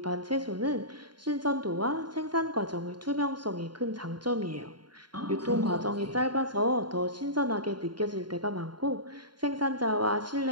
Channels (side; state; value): left; late; 0.71 ms